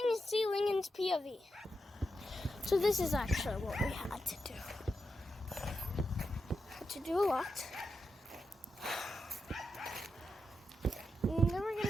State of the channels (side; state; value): both; normal; correlation 0.87